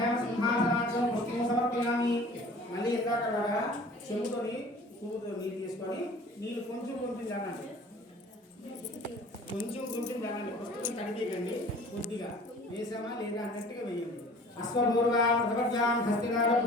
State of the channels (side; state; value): both; normal; correlation 0.47